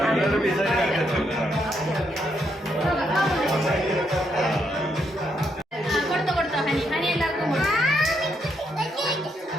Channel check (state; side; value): normal; both; correlation 0.77